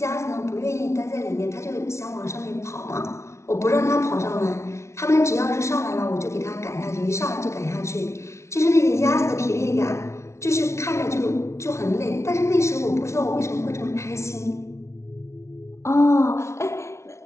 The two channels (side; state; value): right; late; 0.13 ms